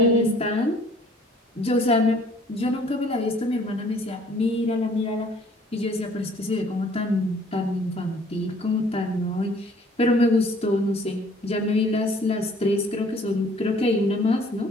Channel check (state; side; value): normal; both; correlation 0.56